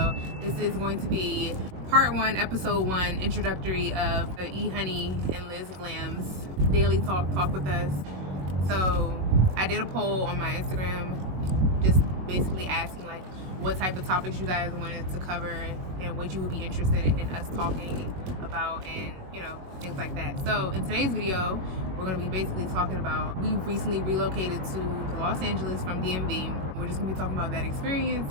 This is going to be part 1, episode 1, introductory of the Ehoney and LizzGlams daily talk with us. So I did a poll on my Instagram, just basically asking like what type of topics you guys wanted to cover and what you would be interested in us talking about, and you know, things like that. So in today's video, we're going to be basically talking about, we recently relocated to Los Angeles from DMV. We're just going to be talking about that experience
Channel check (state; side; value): late; left; 21 ms